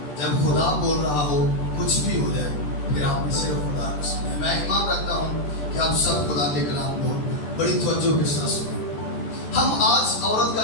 جب خدا بول رہا ہو، کچھ بھی ہو جائے، پھر آپ نے صرف خدا کو سنیں۔ میں ایمان رکھتا ہوں کہ آپ سب خدا کے کلام کو بڑی توجہ کے ساتھ سنیں۔ ہم آج عورت کا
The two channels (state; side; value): late; right; 14 ms